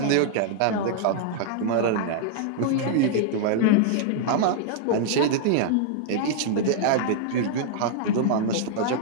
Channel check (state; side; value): different; both; correlation -0.01